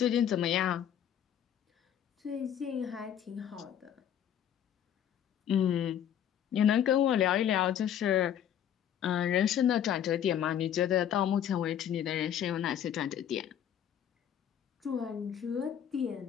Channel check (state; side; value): quieter; right; 9.7 dB